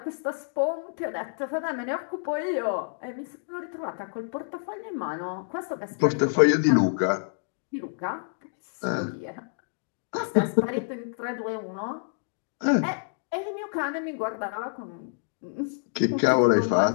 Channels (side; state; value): right; silent; digital silence